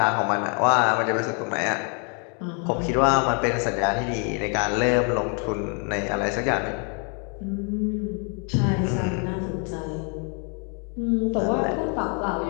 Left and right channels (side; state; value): right; quieter; 38.8 dB